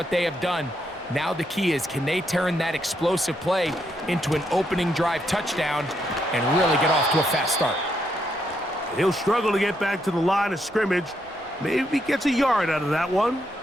they have done. Now the key is, can they turn that explosive play into an opening drive touchdown and really get off to a fast start? He'll struggle to get back to the line of scrimmage. Maybe gets a yard out of that one.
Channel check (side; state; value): both; normal; correlation 0.78